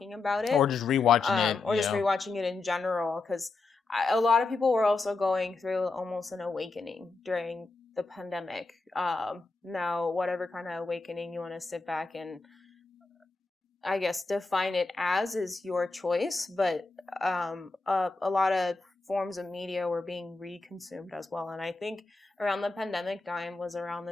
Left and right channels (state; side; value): quieter; right; 3.7 dB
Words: about it. Or just rewatching it. Or just rewatching it in general, because a lot of people were also going through almost an awakening during the pandemic. Now, whatever kind of awakening you want to sit back and, I guess, define it as is your choice, but a lot of forms of media were being reconsumed as well. And I think around the pandemic time was around